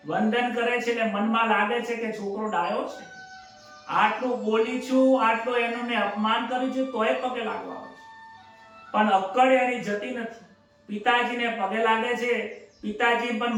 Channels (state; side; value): identical; both; correlation 1.00